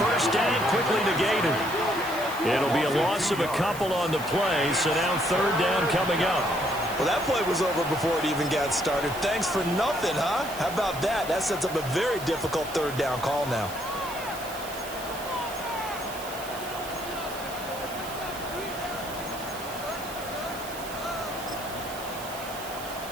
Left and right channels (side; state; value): right; noise; hiss, 13 dB below the sound